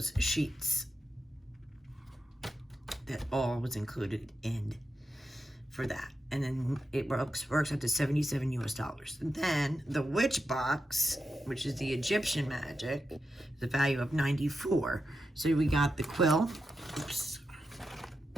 sheets. That all was included in for that. And then it works out to $77 US. And then the witch box, which is the Egyptian magic, the value of 94. So we got the quill. Oops.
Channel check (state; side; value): normal; both; correlation 0.87